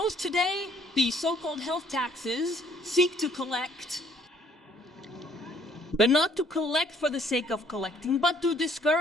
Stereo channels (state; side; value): normal; both; correlation 0.62